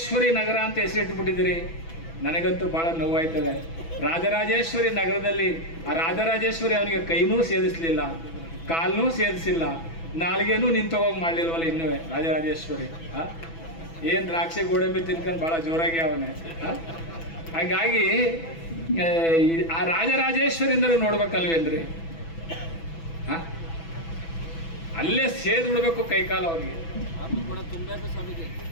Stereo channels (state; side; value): late; right; 6.1 ms